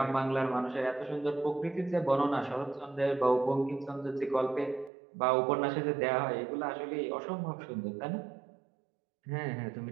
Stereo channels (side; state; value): left; drops out; at 4.9 s